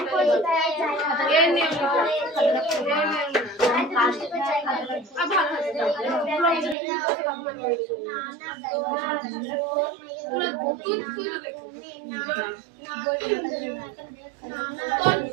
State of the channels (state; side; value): drops out; left; at 6.8 s